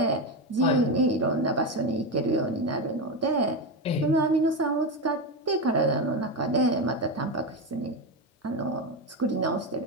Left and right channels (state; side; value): normal; both; correlation 0.14